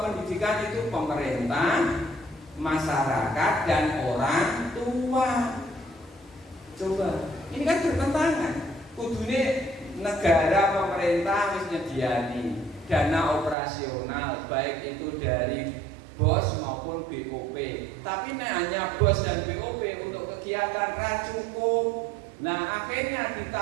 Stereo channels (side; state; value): left; drops out; at 13.6 s